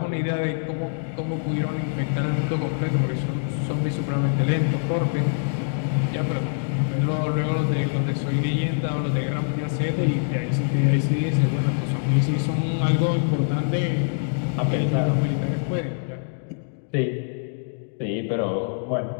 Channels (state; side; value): silent; right; digital silence